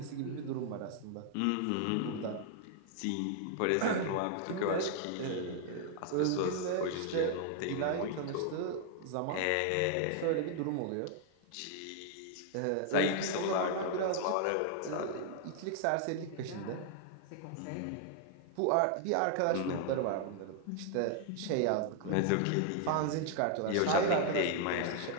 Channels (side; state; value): both; different; correlation 0.00